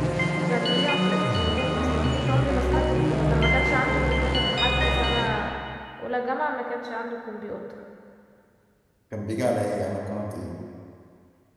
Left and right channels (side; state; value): both; identical; correlation 1.00